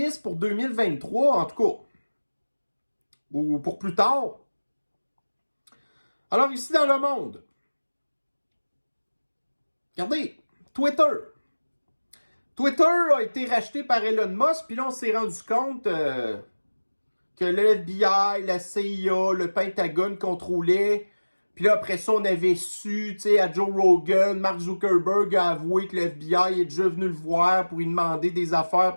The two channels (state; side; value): inverted; both; correlation -1.00